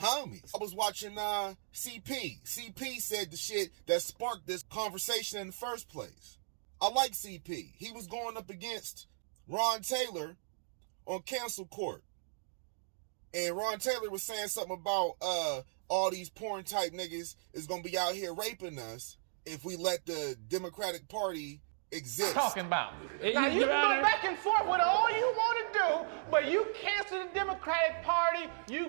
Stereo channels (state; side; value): silent; left; digital silence